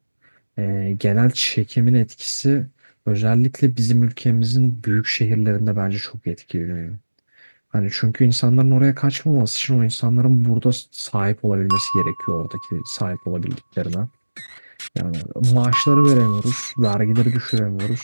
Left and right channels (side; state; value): both; inverted; correlation -1.00